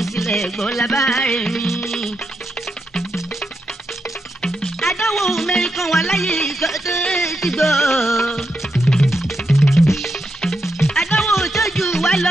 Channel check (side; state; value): both; normal; correlation 0.84